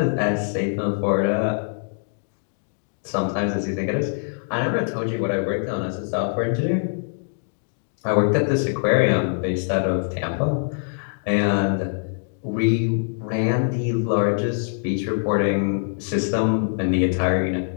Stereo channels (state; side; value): silent; right; digital silence